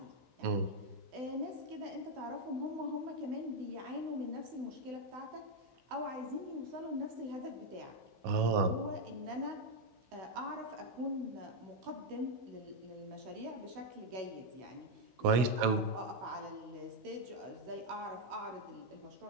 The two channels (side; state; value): left; late; 16 ms